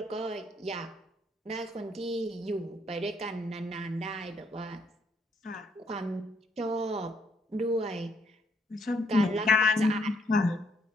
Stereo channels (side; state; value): both; normal; correlation 0.72